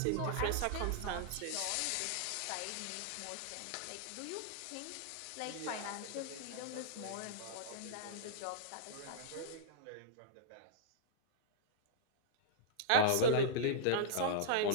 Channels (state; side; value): different; both; correlation -0.02